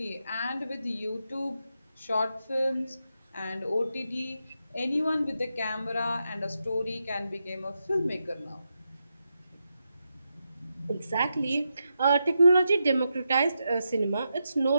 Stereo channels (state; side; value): inverted; both; correlation -0.86